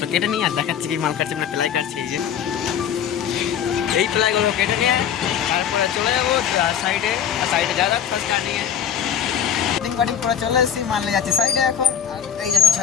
কেটে নিয়ে আর দেখাচ্ছি কি মাল কাটছে, মানে প্লাই কাটছে। এই প্লাইগুলো কেটে নিয়ে তারপরে চলে যাবো সাইডে, আর সাইডে যা যাক ফার্স্ট কাটিংয়ে কাটিং করে চলে এসেছি, মাল নিয়ে যাচ্ছি সাইডে এখন। আর এই যে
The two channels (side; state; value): right; quieter; 8.8 dB